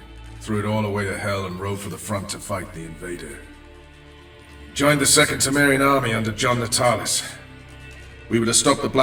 Threw it all away to hell and rode for the front to fight the invader. Joined the Second Temerian army under John Natalis. We were to stop the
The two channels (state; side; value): identical; both; correlation 1.00